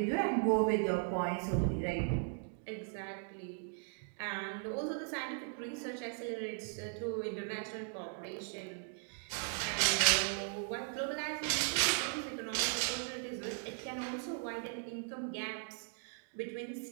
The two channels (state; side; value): silent; left; 53 dB below the other